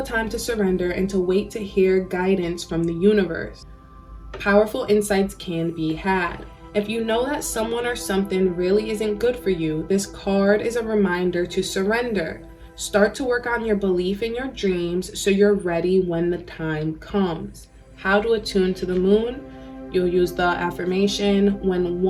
time to surrender and to wait to hear guidance from the universe. Powerful insights can be had. If you know that someone or something really isn't good for you, this card is a reminder to surrender. Start to work on your belief in your dreams so you're ready when the time comes. How to attune to the moon? You'll use the affirmation, when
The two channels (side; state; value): both; identical; correlation 1.00